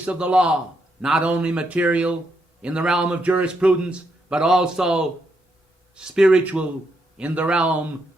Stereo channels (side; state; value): both; normal; correlation 0.79